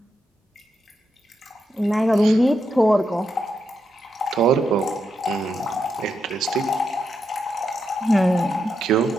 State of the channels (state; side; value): normal; both; correlation 0.83